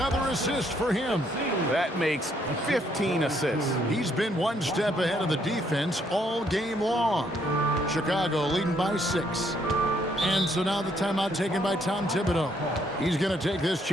assist for him. That makes 15 assists. He's been one step ahead of the defense all game long. Chicago leading by 6. And so now the timeout taken by Tom Thibodeau. He's going to take this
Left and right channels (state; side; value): normal; both; correlation 0.70